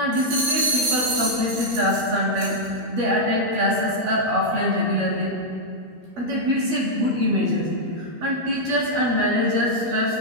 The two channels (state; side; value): late; left; 13 ms